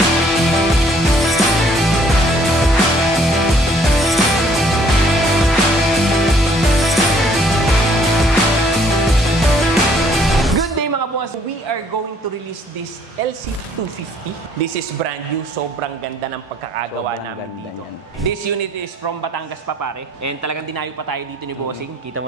To release this LC250. This is brand new. Sobrang ganda ng pagkakagawa namin dito. This unit is from Batangas pa pare. And talagang dinayo pa tayo dito ni Bossing. Kita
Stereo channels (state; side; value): normal; both; correlation 0.62